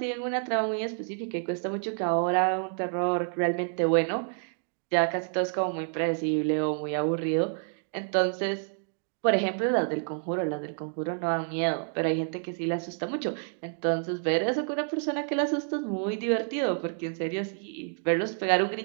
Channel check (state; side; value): silent; left; 59 dB below the other